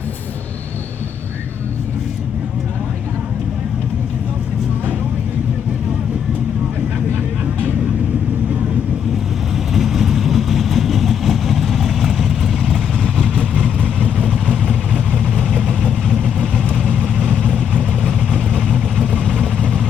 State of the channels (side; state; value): right; quieter; 8.1 dB